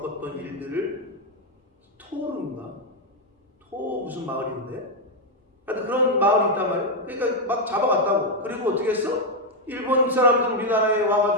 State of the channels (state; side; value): normal; both; correlation 0.02